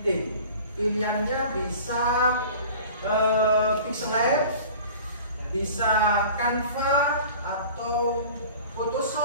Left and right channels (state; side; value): inverted; both; correlation -0.42